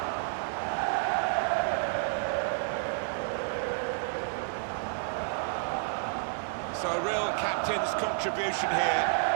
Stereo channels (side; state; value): left; silent; digital silence